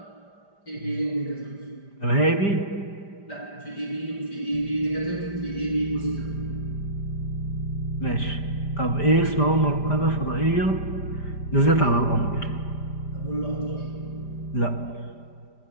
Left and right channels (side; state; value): right; late; 5.0 ms